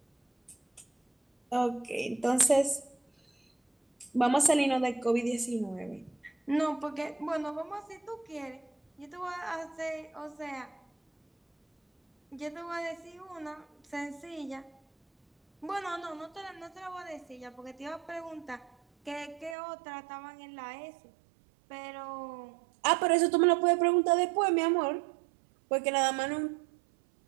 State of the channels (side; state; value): left; drops out; at 19.6 s